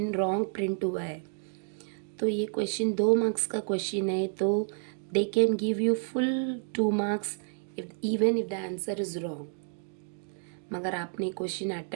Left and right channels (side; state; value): left; silent; digital silence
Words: रॉन्ग प्रिंट हुआ है, तो ये क्वेश्चन 2 मार्क्स का क्वेश्चन है तो they can give you full 2 marks even if the answer is wrong. मगर आपने क्वेश्चन